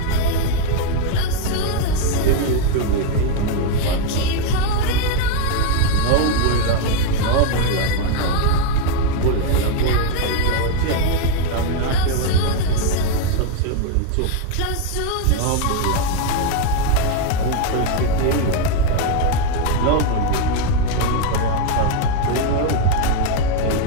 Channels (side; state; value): both; different; correlation 0.01